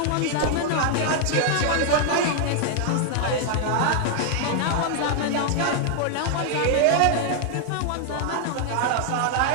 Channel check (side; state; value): both; different; correlation 0.00